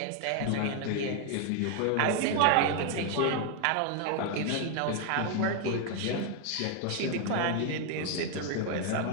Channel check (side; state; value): both; different; correlation 0.01